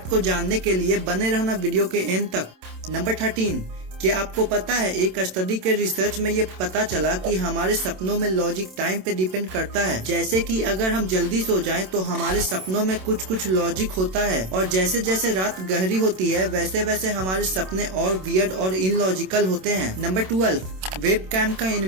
को जानने के लिए बने रहना वीडियो के एंड तक। नंबर 13, क्या आपको पता है एक स्टडी के रिसर्च में ये पता चला कि हमारे सपनों में लॉजिक टाइम पे डिपेंड करता है। जैसे कि अगर हम जल्दी सो जाएं तो हमारे सपनों में कुछ लॉजिक होता है और जैसे जैसे रात गहरी होती है वैसे वैसे हमारे सपने और वियर्ड और इनलॉजिकल होते हैं। नंबर 12, वेबकैम का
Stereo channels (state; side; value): late; left; 27 ms